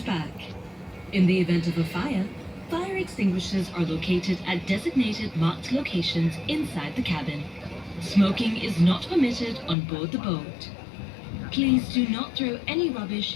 back. In the event of a fire extinguishers are located at designated marked locations inside the cabin. Smoking is not permitted on board the boat. Please do not throw any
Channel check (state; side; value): drops out; right; at 9.8 s